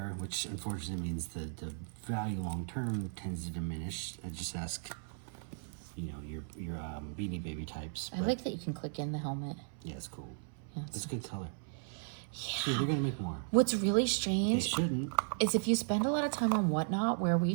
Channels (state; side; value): silent; left; 54 dB below the other